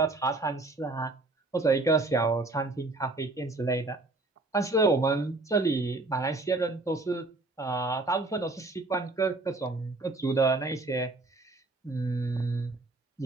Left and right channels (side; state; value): left; quieter; 3.1 dB